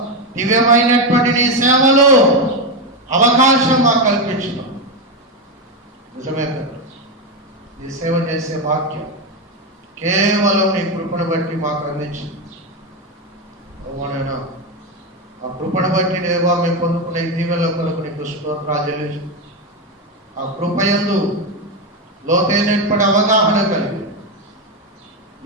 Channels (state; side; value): normal; both; correlation 0.11